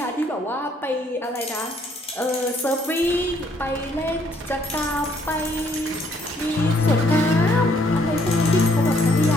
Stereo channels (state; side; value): normal; both; correlation 0.67